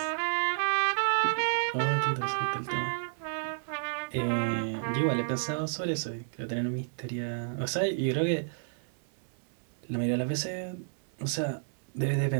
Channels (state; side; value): silent; left; 57 dB below the other